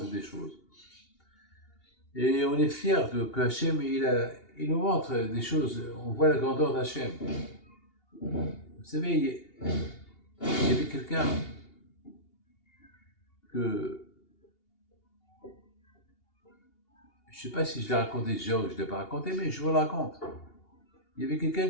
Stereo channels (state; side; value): late; right; 2.8 ms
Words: des choses. Et on est fiers que Hachem, il nous montre des choses. On voit la grandeur d'Hachem. Vous savez, il y avait quelqu'un que. Je ne sais pas si je l'ai raconté déjà ou je ne l'ai pas raconté, mais je vous le raconte. Il y avait